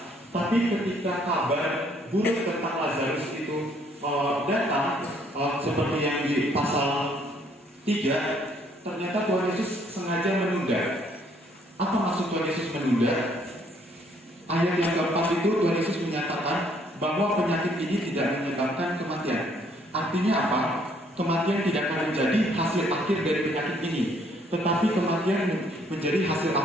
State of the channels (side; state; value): both; normal; correlation 0.65